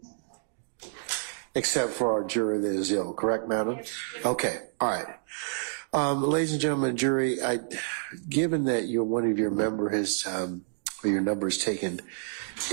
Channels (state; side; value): silent; left; digital silence